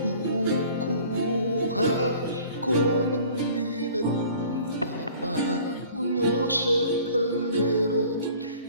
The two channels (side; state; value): both; inverted; correlation -0.49